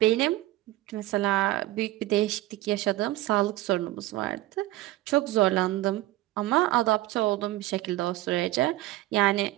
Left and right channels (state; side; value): quieter; left; 17.0 dB